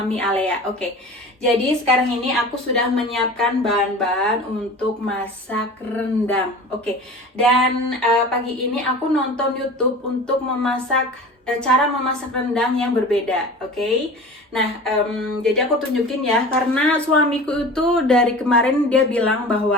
Alea. Oke, jadi sekarang ini aku sudah menyiapkan bahan-bahan untuk masak rendang. Oke, dan pagi ini aku nonton YouTube untuk memasak cara memasak rendang yang berbeda. Oke. Nah, jadi aku tunjukin ya, karena suamiku itu dari kemarin dia bilang bahwa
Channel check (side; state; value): both; normal; correlation 0.37